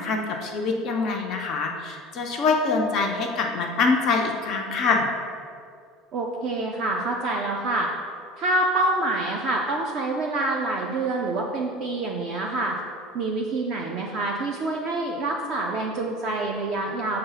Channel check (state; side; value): normal; both; correlation 0.38